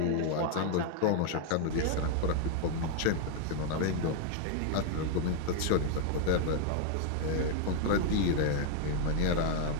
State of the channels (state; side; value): different; both; correlation 0.00